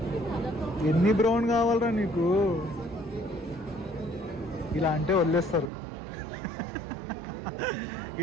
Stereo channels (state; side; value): drops out; left; at 5.7 s